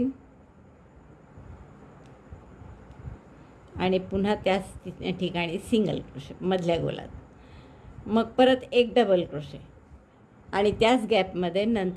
आणि पुन्हा त्याच ठिकाणी सिंगल क्रोशे मधल्या गोलात, मग परत एक डबल क्रोशे आणि त्याच गॅपमध्ये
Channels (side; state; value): both; identical; correlation 1.00